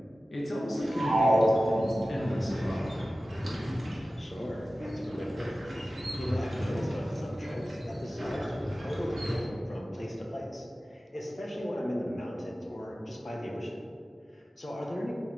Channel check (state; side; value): normal; both; correlation 0.96